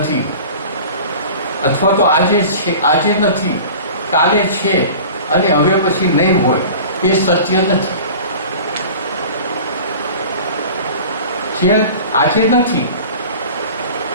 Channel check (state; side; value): inverted; both; correlation -0.39